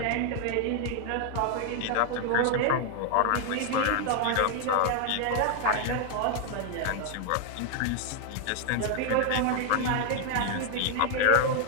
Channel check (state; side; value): different; both; correlation 0.00